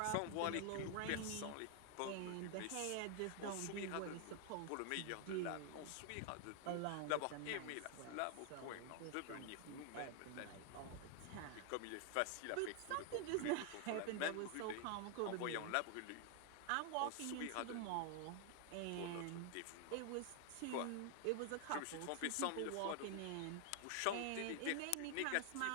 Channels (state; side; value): different; both; correlation 0.00